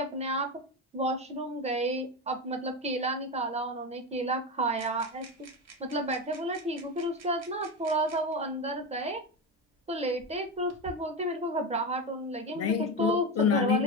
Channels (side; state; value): both; normal; correlation 0.17